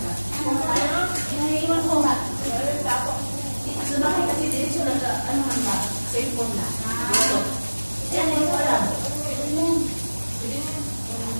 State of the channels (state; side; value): inverted; both; correlation -1.00